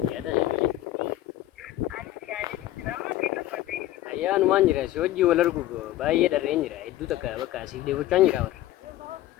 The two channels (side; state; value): right; quieter; 14.6 dB